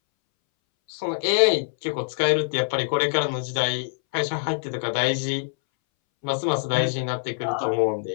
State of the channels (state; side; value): silent; right; 62 dB below the other